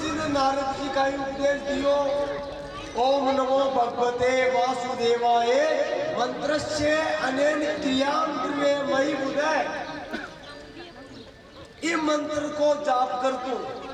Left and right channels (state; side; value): identical; both; correlation 1.00